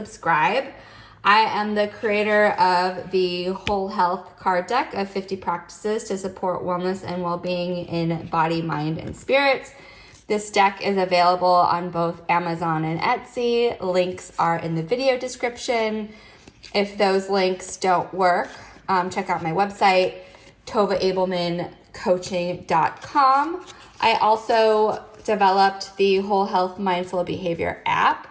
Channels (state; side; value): identical; both; correlation 1.00